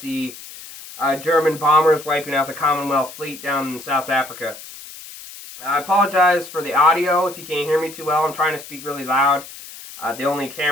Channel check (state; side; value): noise; left; hiss, 15 dB below the sound